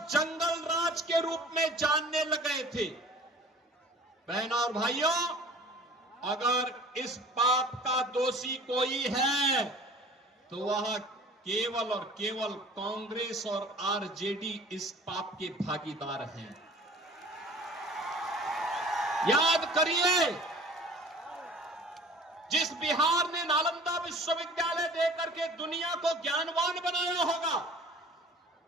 जंगल राज के रूप में जानने लगे थे? बहनों और भाइयों, अगर इस पाप का दोषी कोई है तो वह केवल और केवल कांग्रेस और आरजेडी इस पाप के भागीदार हैं। याद करिए, जिस बिहार ने नालंदा विश्वविद्यालय देकर के दुनिया को ज्ञानवान बनाया होगा,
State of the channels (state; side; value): normal; both; correlation 0.46